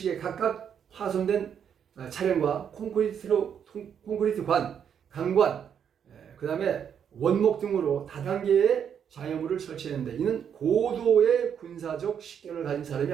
각각 화손된 차량과 콘크리트 관, 강관, 그 다음에 원목 등으로 다단계의 장애물을 설치했는데 이는 고도의 군사적 식견을 가진 사람이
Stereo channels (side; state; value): left; quieter; 8.1 dB